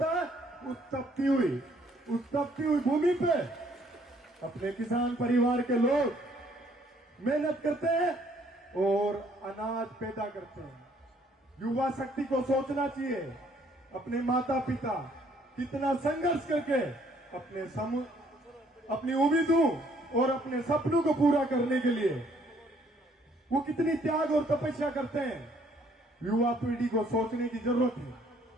है। उस तपती हुई भूमि पे अपने किसान परिवार के लोग मेहनत करते हैं और अनाज पैदा करते हैं। युवा शक्ति को सोचना चाहिए, अपने माता पिता कितना संघर्ष करके अपनी उम्मीदों और अपने सपनों को पूरा करने के लिए वो कितनी त्याग और तपस्या करते हैं। युवा पीढ़ी को सोचने की जरूरत है।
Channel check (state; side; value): normal; both; correlation 0.64